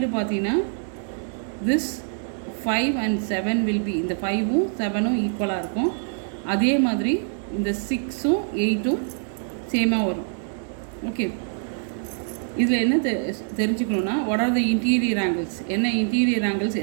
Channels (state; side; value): silent; left; digital silence